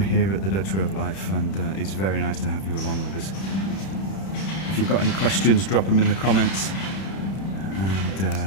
at the Dutch Way of Life, and it's very nice to have you along with us. If you've got any questions, drop them in the comments, and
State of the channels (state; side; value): late; right; 31 ms